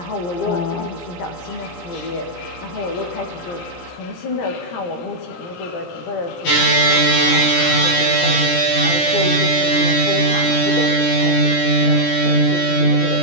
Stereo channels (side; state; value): right; late; 17 ms